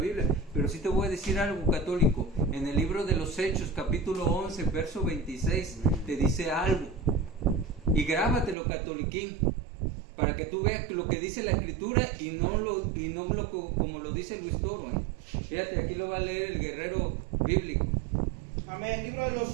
Pero sí te voy a decir algo, católico. En el libro de los Hechos, capítulo 11, verso 26, te dice algo. Y grábatelo, catoliquín, para que tú veas lo que dice la Escritura y no como lo dice Luis Toro. Fíjate, aquí lo va a leer el guerrero bíblico. Amén. Libro de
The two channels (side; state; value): left; drops out; at 8.6 s